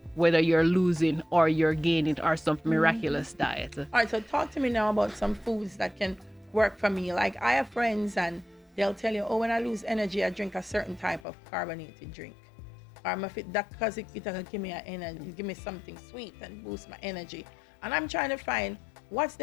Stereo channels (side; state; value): right; drops out; at 11.2 s